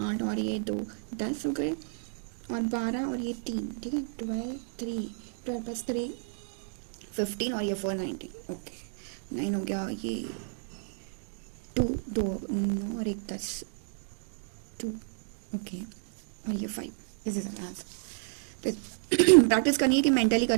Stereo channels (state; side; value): silent; left; digital silence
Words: 8 और ये 2 10 हो गए, और 12 और ये 3, ठीक है 12 प्लस 3 15, और ये 4 19, ओके 9 हो गया, ये 2 2 9 और 1 10 2, ओके, और ये 5, दिस इज आंसर। प्रैक्टिस करनी है कि मेंटली